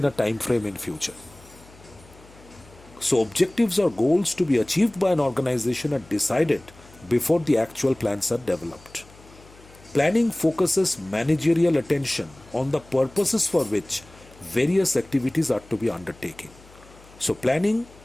a time frame in future. So objectives or goals to be achieved by an organization are decided before the actual plans are developed. Planning focuses managerial attention on the purposes for which various activities are to be undertaken. So planning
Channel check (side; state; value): left; noise; hum, 24 dB below the sound